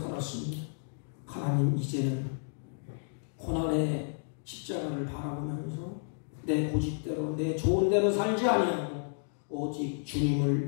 하나님, 이제는 고난의 십자가를 바라보면서 내 고집대로 내 좋은 대로 살지 아니하고 오직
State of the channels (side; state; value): right; silent; digital silence